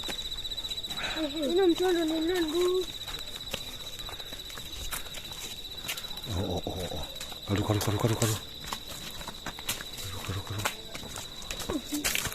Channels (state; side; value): identical; both; correlation 1.00